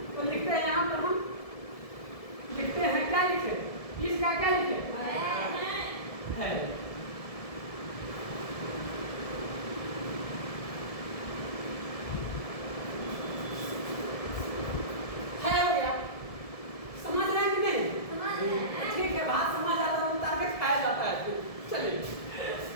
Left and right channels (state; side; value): late; right; 1.7 ms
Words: तो लिखते हैं यहाँ पर, हम लिखते हैं, क्या लिखे, इसका क्या लिखे है, हो गया। समझ रहे हैं कि नहीं, ठीक है, बात समझ आता है, उतार के खाया जाता है। चलिए,